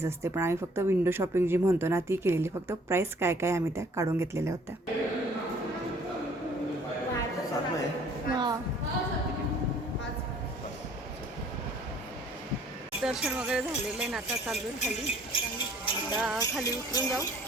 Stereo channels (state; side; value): normal; both; correlation 0.56